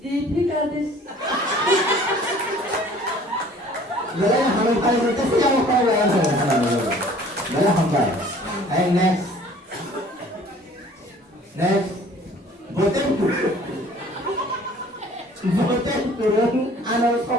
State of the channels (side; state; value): both; normal; correlation 0.51